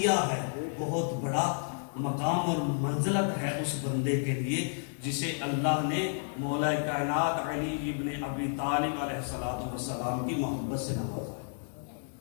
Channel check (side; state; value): right; silent; digital silence